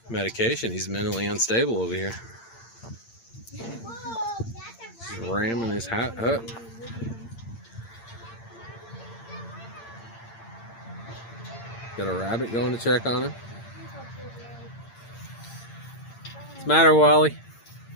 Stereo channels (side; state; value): right; late; 8.8 ms